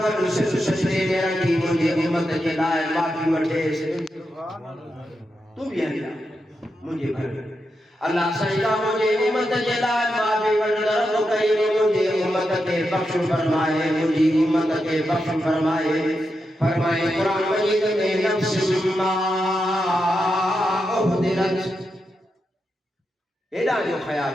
गॾु सिर सजदे में रखी मुंहिंजे उम्मत जे लाइ माफ़ी वठेसि तूं बि हली मुंहिंजे घर अल्लाह साईं का मुंहिंजे उम्मत जे लाइ माफ़ी वठंदड़ तो कई मुंहिंजे उम्मत खे बख़्श फरमाए मुंहिंजी उम्मत खे बख़्श फरमाए क़ुरान मजीद में नफ्स मा उहदिरत हेॾा जो ख़्याल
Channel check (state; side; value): normal; both; correlation 0.86